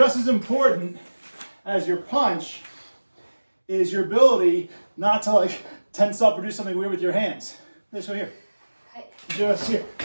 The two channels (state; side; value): inverted; both; correlation -1.00